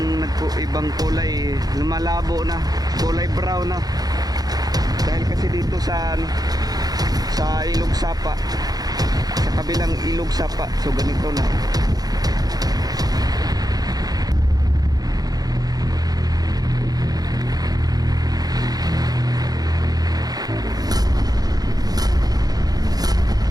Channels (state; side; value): late; left; 0.19 ms